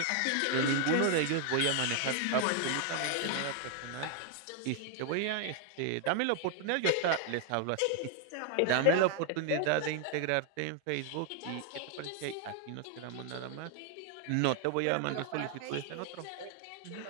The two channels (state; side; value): different; both; correlation 0.00